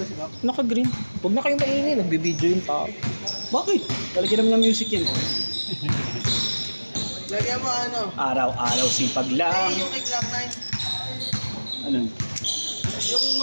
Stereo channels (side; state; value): both; inverted; correlation -1.00